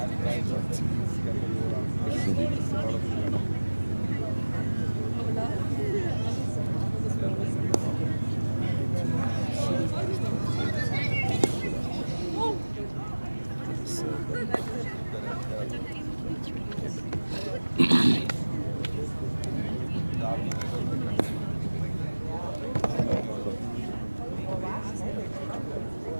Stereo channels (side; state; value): both; inverted; correlation -1.00